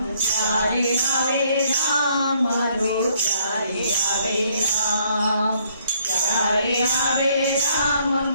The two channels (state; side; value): inverted; both; correlation -0.66